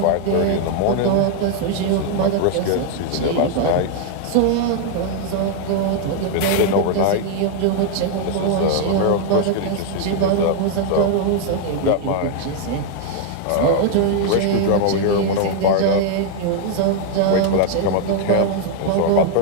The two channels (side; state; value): both; different; correlation 0.00